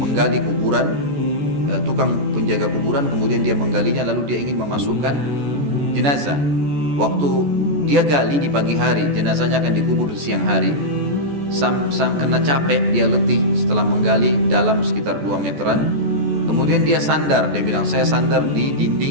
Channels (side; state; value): left; late; 14 ms